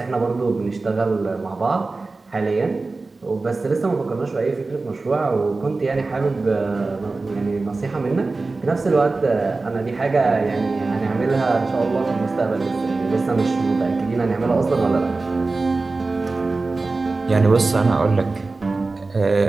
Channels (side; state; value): left; quieter; 3.6 dB